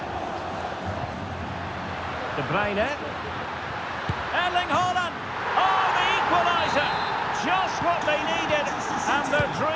De Bruyne. Erling Haaland. Oh, the equaliser. Just what they needed. And their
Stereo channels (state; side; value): identical; both; correlation 1.00